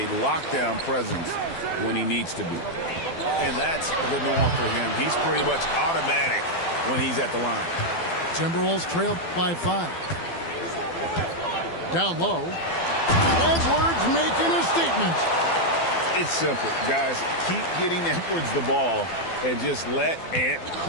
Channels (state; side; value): late; right; 12 ms